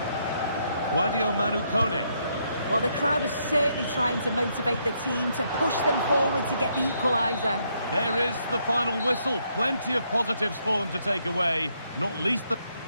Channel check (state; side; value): inverted; both; correlation -0.75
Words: Guadio Manu Kone. Well, the crowd is certainly trying to motivate the team to push them forward to get the equaliser. There is the final whistle. Plenty of positives for them to take away, not least the...